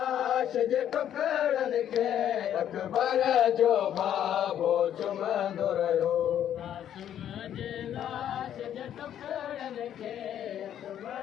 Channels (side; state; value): right; quieter; 10.3 dB